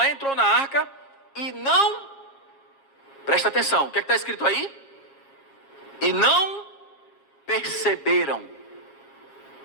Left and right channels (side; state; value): right; late; 7.4 ms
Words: entrou na arca, e não... Presta atenção, o que é que está escrito aí? E não perceberam.